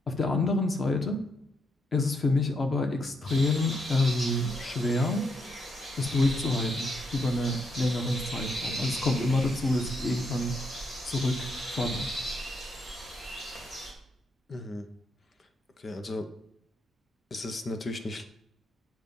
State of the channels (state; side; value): normal; both; correlation 0.77